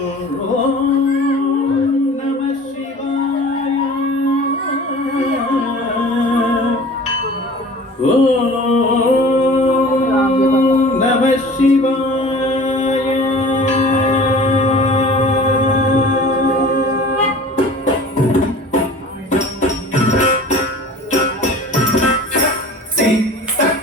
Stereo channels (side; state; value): both; normal; correlation 0.43